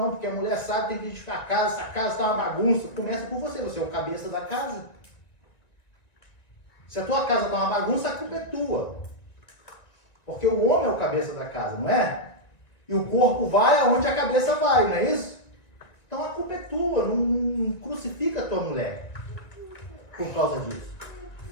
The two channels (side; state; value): right; late; 1.9 ms